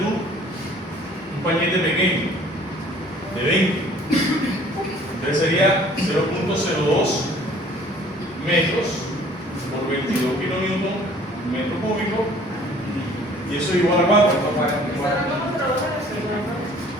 un pañete pequeño de 20. Entonces sería 0.02 metros por 22 kilonewton metro cúbico, y eso es igual a ¿cuánto?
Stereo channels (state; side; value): normal; both; correlation 0.54